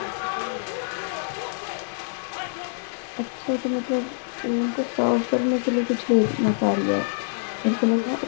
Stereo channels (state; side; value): silent; right; digital silence